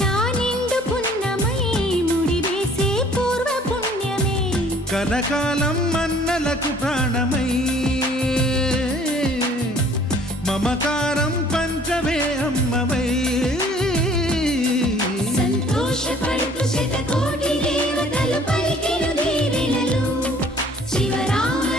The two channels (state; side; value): normal; both; correlation 0.55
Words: నిండు పున్నమై ముడివేసే పూర్వ పుణ్యమే కలకాలం మన్నలకు ప్రాణమై మమకారం పంచవే అమ్మవై సంతోషపడుతు శతకోటి దేవతలు పలికెను దీవెనలు